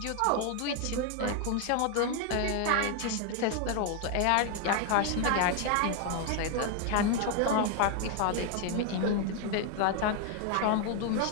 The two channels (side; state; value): both; different; correlation 0.00